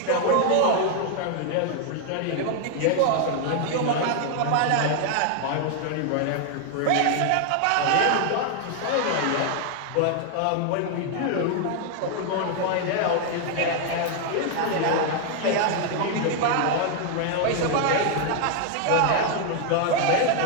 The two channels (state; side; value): different; both; correlation 0.00